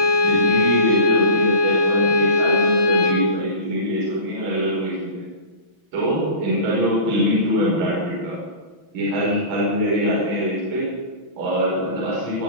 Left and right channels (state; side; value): late; left; 6.0 ms